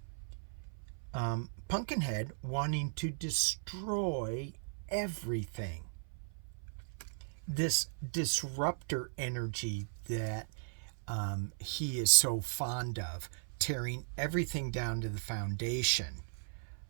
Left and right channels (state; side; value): silent; left; 53 dB below the other